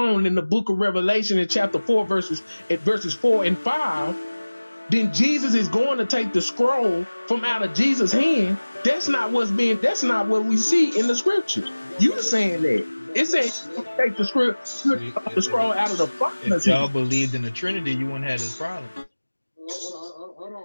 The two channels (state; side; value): inverted; both; correlation -1.00